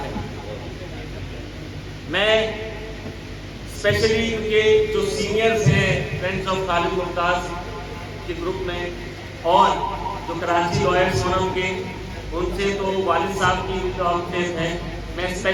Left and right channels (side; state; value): both; identical; correlation 1.00